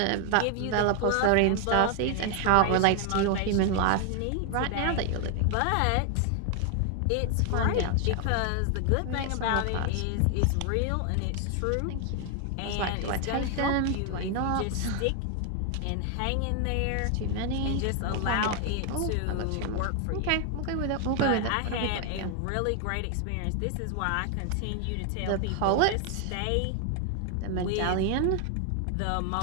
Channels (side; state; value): both; different; correlation 0.00